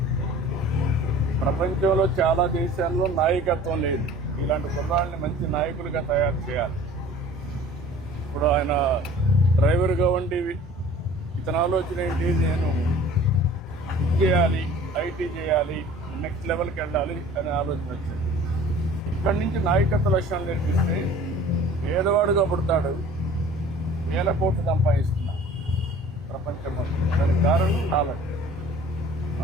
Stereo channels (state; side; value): normal; both; correlation 0.46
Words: ప్రపంచంలో చాలా దేశాల్లో నాయకత్వం లేదు. ఇలాంటి కుర్రాళ్ళని మంచి నాయకులుగా తయారు చేయాలి. ఇప్పుడు ఆయన డ్రైవర్గా ఉండి ఇతని ఆలోచన ఏంటి, నేను చేయాలి, ఐటీ చేయాలి, నెక్స్ట్ లెవెల్కి వెళ్ళాలి అనే ఆలోచన వచ్చింది. ఇక్కడి నుంచి నాయకత్వ లక్షణాలు నేర్పిస్తే పేదవాడుగా పుడతాడు, వేల కోట్లు సంపాదిస్తున్నాడు ప్రపంచం మొత్తం. దానికి కారణం నాలెడ్జ్.